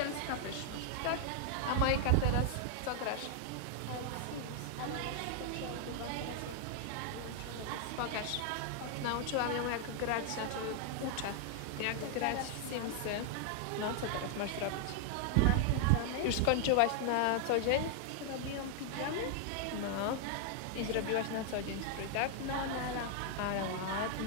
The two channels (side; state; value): both; different; correlation 0.00